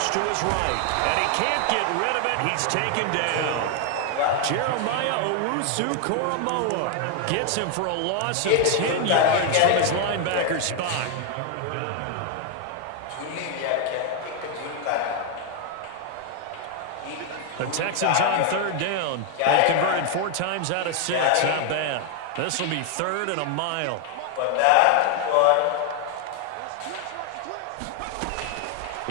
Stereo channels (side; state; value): both; different; correlation 0.00